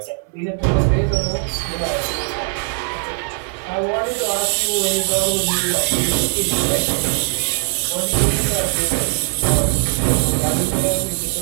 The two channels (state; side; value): silent; left; 66 dB below the other